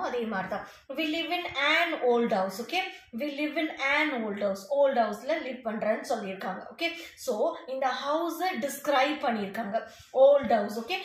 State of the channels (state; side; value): identical; both; correlation 1.00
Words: அதே மாதிரி தான். we live in an old house. Okay, we live in an old house. old houseல லிவ் பண்றேன்னு சொல்லியிருக்காங்க. ஓகே, ஸோ இந்த ஹவுஸை டிஸ்கிரைப் பண்ணியிருக்காங்க. Old house. ஓகே,